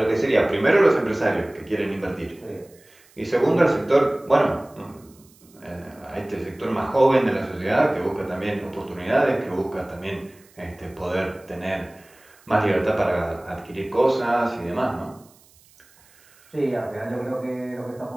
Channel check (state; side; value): noise; right; hiss, 29 dB below the sound